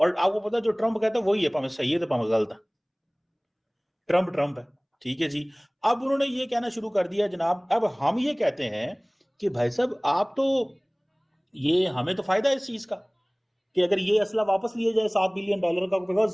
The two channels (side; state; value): both; identical; correlation 1.00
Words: आपको पता है जो ट्रम्प कहता है वही है, भाਵੇਂ सही है तो भाਵੇਂ गलत है, ट्रम्प है, ठीक है जी। अब उन्होंने ये कहना शुरू कर दिया जनाब, अब हम ये कहते हैं कि भाई साहब आप तो, ये हमें तो फायदा है इस चीज का कि अगर ये असला वापस लिया जाए $7 बिलियन का,